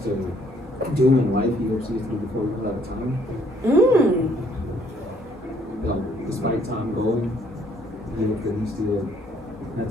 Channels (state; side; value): normal; both; correlation 0.64